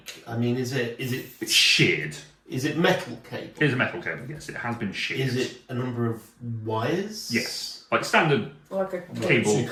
I mean, is it It's sheared. metal cable? It is a metal cable, yes. It has been sheared. Is it a number of wires? Yes. Like standard. Like a Cable. So you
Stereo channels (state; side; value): identical; both; correlation 1.00